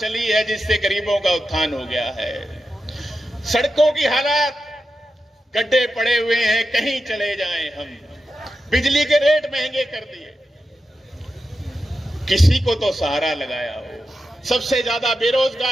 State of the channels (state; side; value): normal; both; correlation 0.90